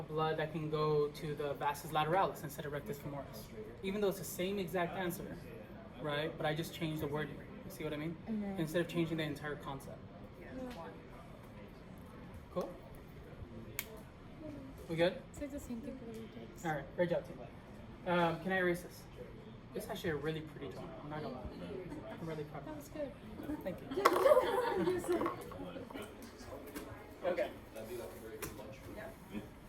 blood that can go to the vastus lateralis instead of rectus femoris. Even though it's the same exact answer, right? But I just changed the wording. You see what I mean? Mhm. Instead of changing the entire concept. Cool? We good? It's like the same thing for the retakes. All right, great job, team. Can I erase this? This is actually a really pretty drawing. I'm not gonna lie. I'm really proud That of was good. it. Thank you. Okay.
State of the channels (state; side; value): identical; both; correlation 1.00